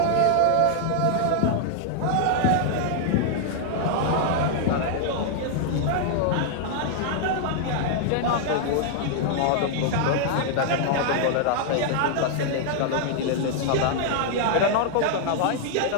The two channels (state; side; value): different; both; correlation -0.01